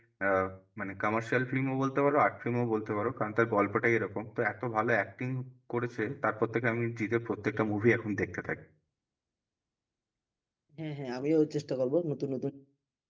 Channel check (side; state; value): both; identical; correlation 1.00